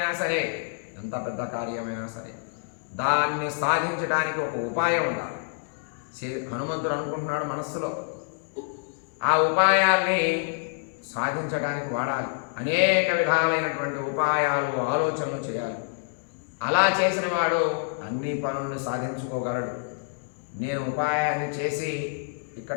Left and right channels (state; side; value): silent; right; digital silence